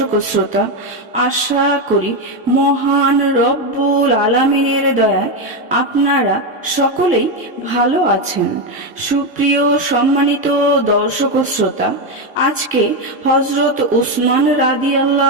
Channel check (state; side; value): normal; both; correlation 0.09